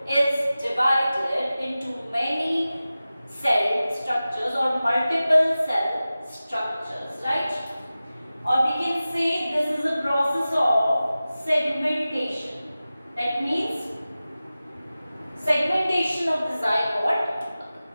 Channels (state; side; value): inverted; both; correlation -0.96